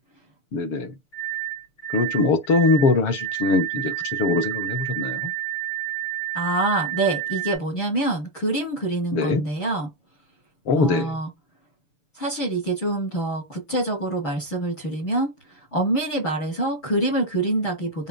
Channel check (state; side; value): late; right; 6.8 ms